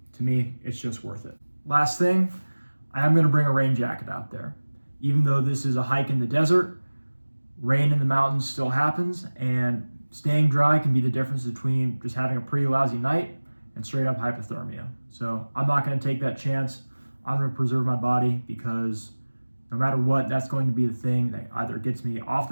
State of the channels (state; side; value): inverted; both; correlation -1.00